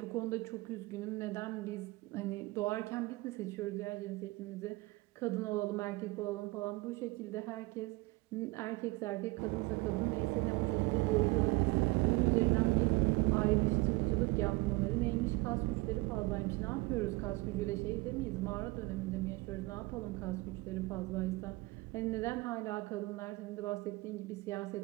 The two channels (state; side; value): quieter; left; 22.8 dB